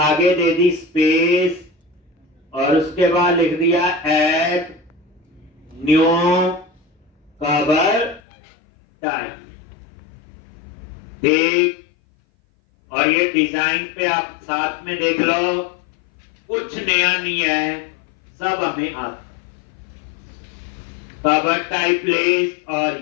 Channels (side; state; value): right; drops out; at 8.2 s